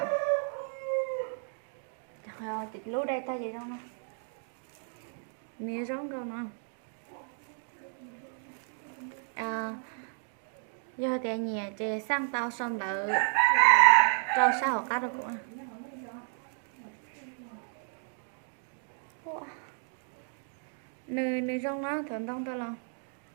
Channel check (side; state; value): left; silent; 56 dB below the other